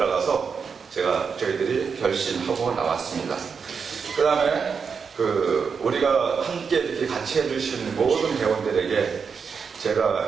저희들이 결심하고 나왔습니다. 그 다음에 우리가 함께 이렇게 같이 해주신 모든 대원들에게 제가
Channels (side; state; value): left; quieter; 5.9 dB